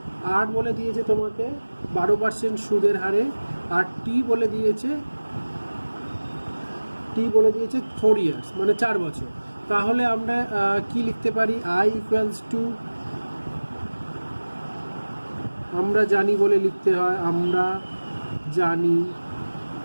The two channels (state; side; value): inverted; both; correlation -1.00